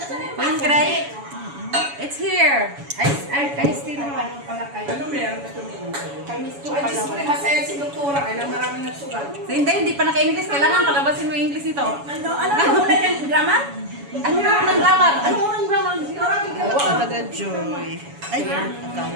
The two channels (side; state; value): left; late; 7.1 ms